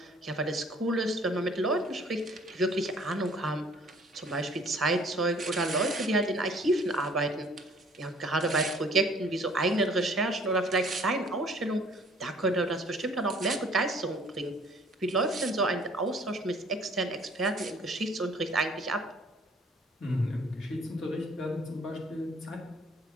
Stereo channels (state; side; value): normal; both; correlation 0.56